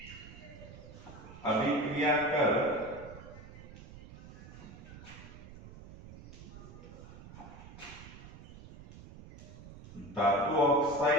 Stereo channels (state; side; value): noise; right; rumble, 16 dB below the sound